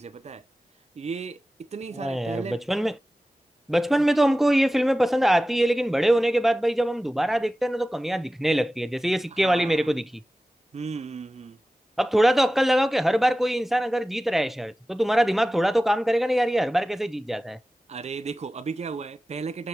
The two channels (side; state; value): both; normal; correlation 0.96